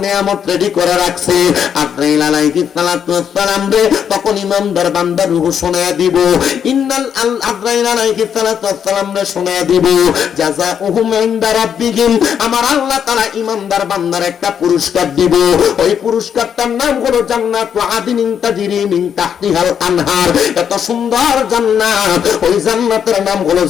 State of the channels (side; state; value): right; quieter; 8.1 dB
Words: নিয়ামত রেডি করে রাখছে। আজরাইল আলাইহিস সালাতু ওয়াস সালাম রে তখন ইমানদার বান্দার রূহ শোনায়া দিব। ইন্নাল আজরাইল আলাইহিস সালাতু ওয়াস সালাম রে শোনায়া দিব জাযাউহুম ইনদা রাব্বিহিম, আমার আল্লাহ তাআলা ইমানদার বান্দার একটা পুরস্কার দিব। ওই পুরস্কারটার নাম হলো জান্নাতু আদিনিন তাজরি মিন তাহতিহাল আনহার। এত সুন্দর জান্নাত, ওই জান্নাতের নাম হলো